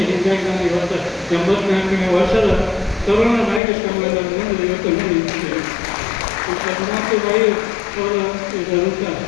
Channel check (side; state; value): right; drops out; at 3.6 s